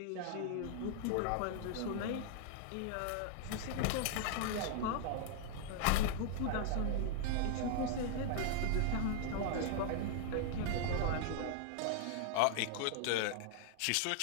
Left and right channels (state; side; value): different; both; correlation -0.01